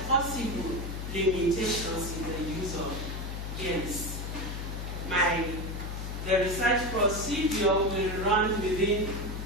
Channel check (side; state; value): left; noise; hum, 5 dB below the sound